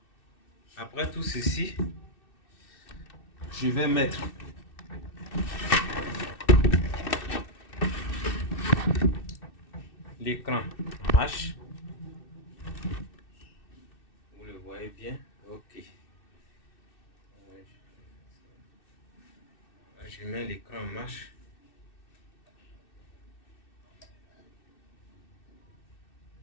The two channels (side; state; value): right; late; 2.6 ms